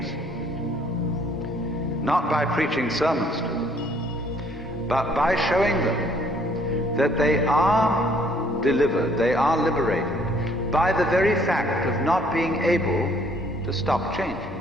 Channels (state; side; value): normal; both; correlation 0.62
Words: not by preaching sermons to them, but by showing them that they are delivered, they are liberated by the very fact of not being able to stop changing.